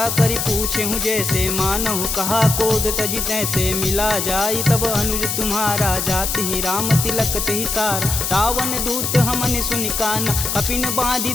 करि पूछे हूँ जैसे, मानहु कहा क्रोध तजि तैसे। मिला जाई तब अनुज तुम्हारा, जाति ही राम तिलक तेहि सार। रावण दूत हमन सुनि काना, कपिन बांधि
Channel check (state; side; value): noise; left; hiss, 1 dB below the sound